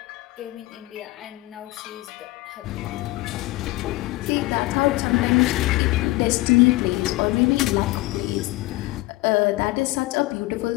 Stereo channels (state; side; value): quieter; right; 20.0 dB